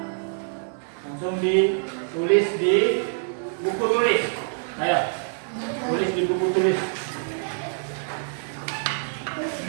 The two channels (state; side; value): silent; left; 61 dB below the other